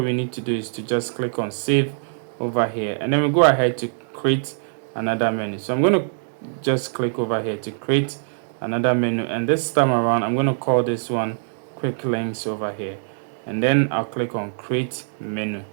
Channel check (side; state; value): left; silent; digital silence